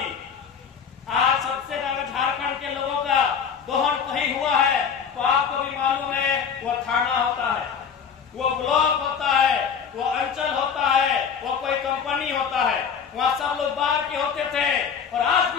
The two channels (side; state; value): right; quieter; 6.9 dB